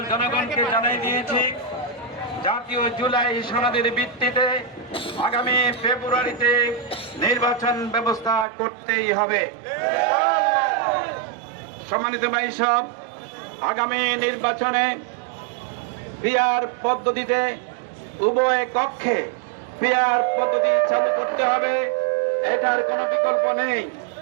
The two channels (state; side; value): drops out; left; at 8.5 s